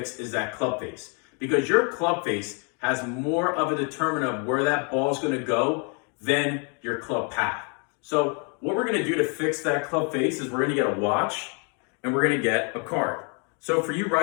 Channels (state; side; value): quieter; right; 37.3 dB